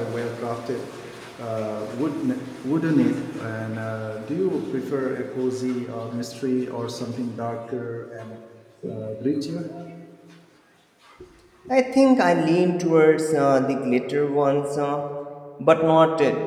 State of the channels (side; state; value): both; identical; correlation 1.00